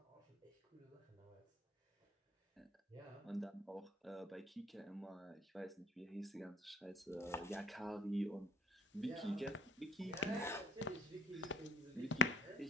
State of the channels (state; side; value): normal; both; correlation 0.52